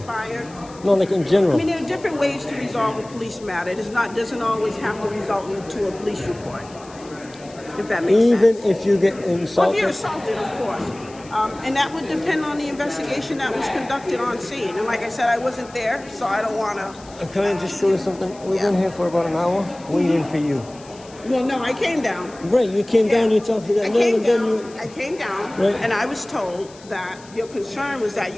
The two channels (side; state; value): left; noise; hiss, 23 dB below the sound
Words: No, like in general. I mean, there are different ways to resolve a police matter. It doesn't always have to result into a police report, if that makes sense. Even if you get insulted? Well, if you're assaulted, of course. And that would depend on the investigation that was conducted on scene. And like I said, I wasn't there, so I don't want to... Can I just show you something? We've been here for about an hour waiting for you. Well, no, I came down. Right, you came down, you talked to that man, and then you... I came down, Right. and I was told that your concern was that